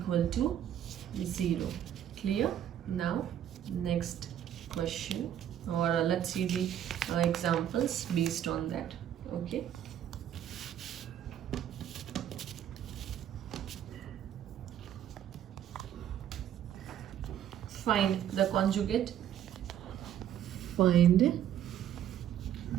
to 0. Clear? Now next question, or let's see the examples based on that. Okay. Find the conjugate. Find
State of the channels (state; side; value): quieter; left; 10.4 dB